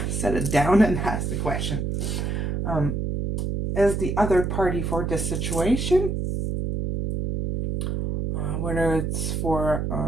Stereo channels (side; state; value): right; noise; hum, 1 dB below the sound